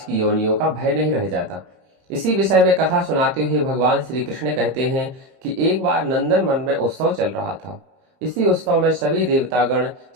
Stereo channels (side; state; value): left; late; 31 ms